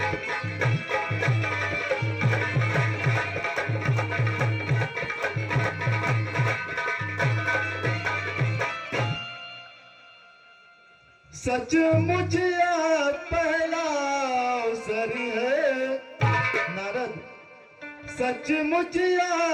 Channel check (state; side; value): identical; both; correlation 1.00